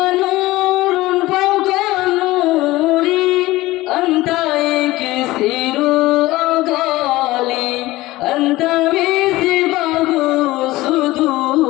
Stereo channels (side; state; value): right; quieter; 18.3 dB